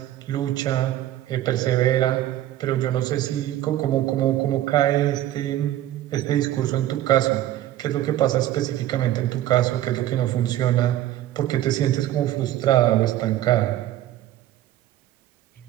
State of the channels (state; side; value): quieter; left; 13.4 dB